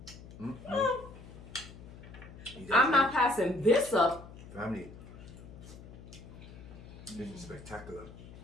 I'm not passing this up. Family, this is spectacular.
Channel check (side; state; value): left; noise; hum, 16 dB below the sound